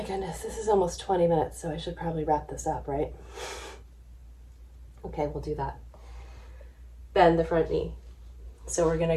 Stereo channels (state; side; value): identical; both; correlation 1.00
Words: this is almost 20 minutes, so I should probably wrap this up, right? Okay, we'll do that. Bend the front knee. So we're